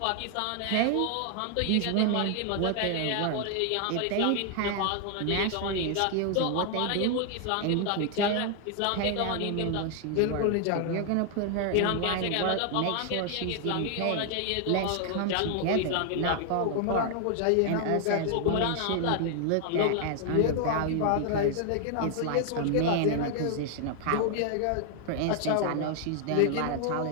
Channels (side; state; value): both; different; correlation 0.00